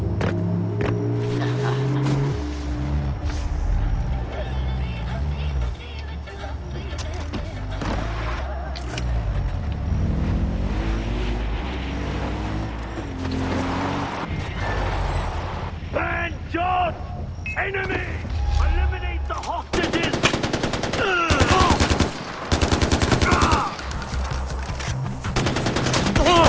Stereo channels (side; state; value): both; identical; correlation 1.00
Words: John! Enemy! Eliminate the hostages!